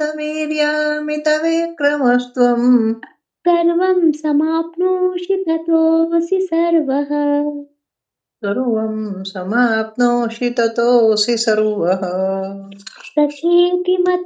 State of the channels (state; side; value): identical; both; correlation 1.00